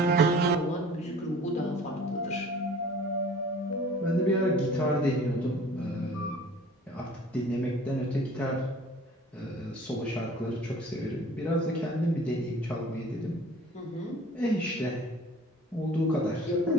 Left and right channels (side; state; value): both; normal; correlation 0.47